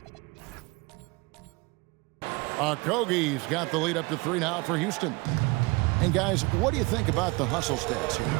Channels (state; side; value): quieter; left; 25.5 dB